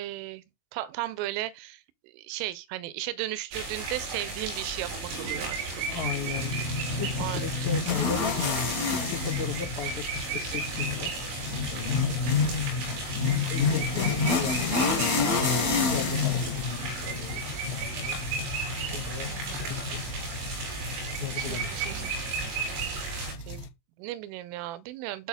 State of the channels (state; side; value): late; left; 24 ms